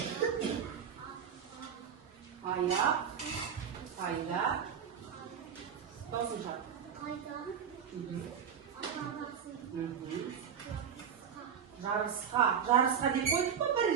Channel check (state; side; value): quieter; left; 7.8 dB